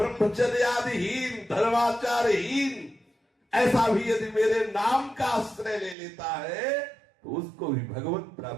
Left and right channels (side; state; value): left; drops out; at 6.0 s